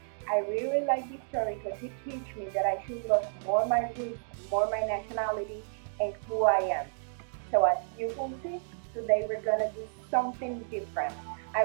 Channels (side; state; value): left; silent; digital silence